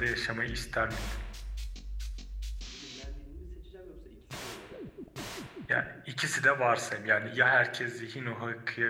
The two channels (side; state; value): both; identical; correlation 1.00